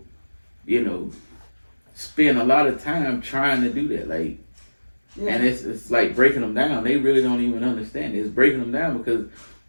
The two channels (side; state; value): both; inverted; correlation -1.00